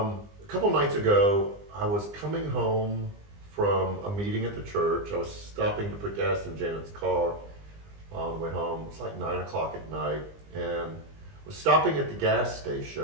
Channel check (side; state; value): left; late; 20 ms